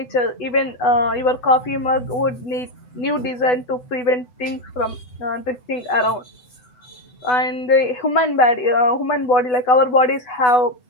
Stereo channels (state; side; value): late; right; 8.1 ms